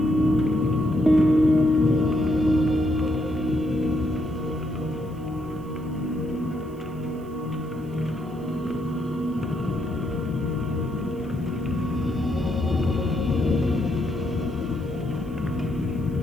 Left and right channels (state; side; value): noise; right; hiss, 29 dB below the sound